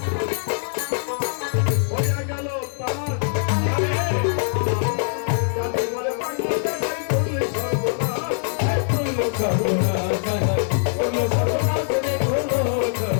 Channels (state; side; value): silent; right; digital silence